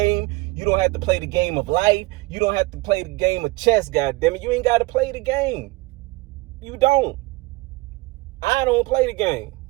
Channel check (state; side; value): quieter; left; 22.8 dB